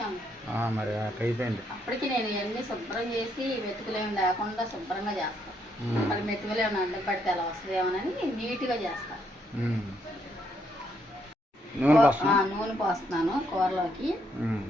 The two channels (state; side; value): normal; both; correlation 0.74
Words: మరి అట్లా అయిపోయింది. అప్పటికి నేను ఇవన్నీ శుభ్రం చేసి వెతుకులేమి లేకుండా శుభ్రంగా చేస్తాను. మళ్ళీ మెతుకులు ఏమైనా అడ్డం పడితే అలా వస్తుందేమోనని నీట్గా చేస్తా. నూనె పోస్తున్నాను కూరలోకి.